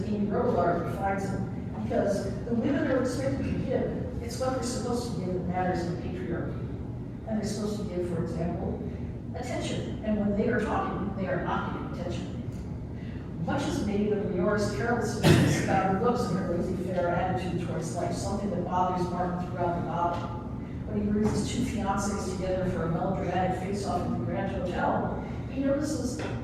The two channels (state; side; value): identical; both; correlation 1.00